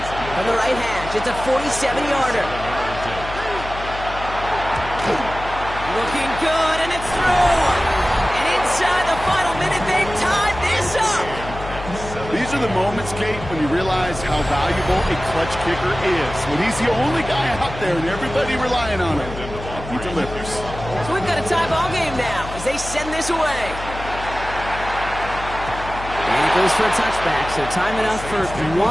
From the right hash, it's a 47-yarder. Looking good, and it's through. And inside the final minute, they've tied this up. These are the moments, Kate, when you realize how valuable a clutch kicker is. When he's the only guy out there and everybody relying on him, he delivers. So we've got a tie ball game now as they send this away. And it goes for a touchback, so time enough for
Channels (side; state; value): left; noise; hum, 11 dB below the sound